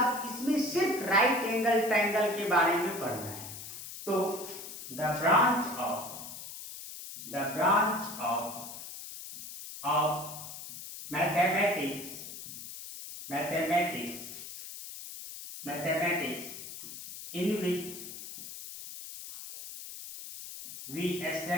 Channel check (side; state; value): left; noise; hiss, 11 dB below the sound